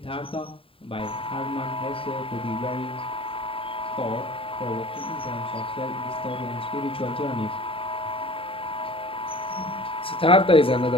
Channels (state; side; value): late; right; 0.26 ms